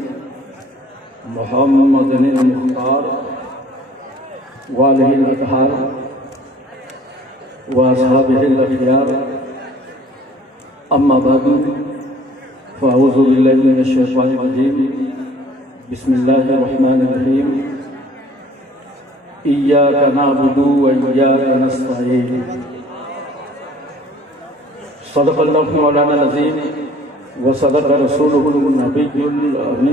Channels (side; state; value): both; normal; correlation 0.53